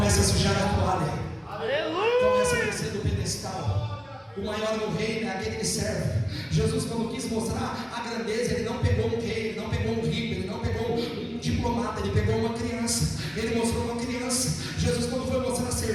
a sujar a toalha. Começa a descer do pedestal. O maior do reino é aquele que serve. Jesus, quando quis mostrar a grandeza, ele não pegou um rei, ele não pegou um rico, ele não pegou um diplomata, ele pegou uma criança. Ele mostrou uma criança. Jesus, quando foi mostrar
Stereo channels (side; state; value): both; identical; correlation 1.00